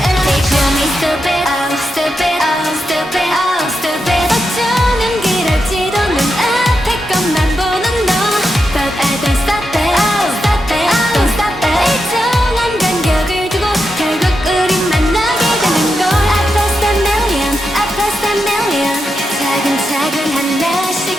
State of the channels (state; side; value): normal; both; correlation 0.86